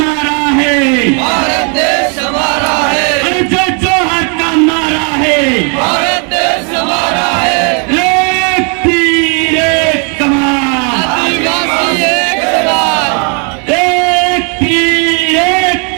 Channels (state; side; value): quieter; left; 37.7 dB